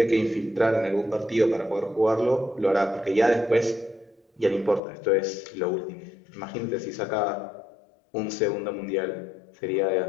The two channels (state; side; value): drops out; right; at 4.8 s